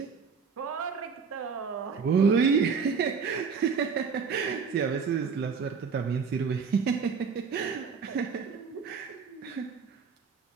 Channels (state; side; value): quieter; left; 5.7 dB